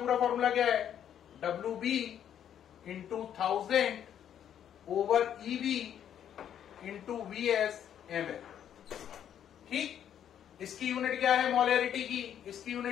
फॉर्मूला क्या है? WB into 1000 over EB into VS ml। ठीक। इसकी यूनिट क्या है मोलैरिटी की? इसकी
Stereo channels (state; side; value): quieter; right; 9.7 dB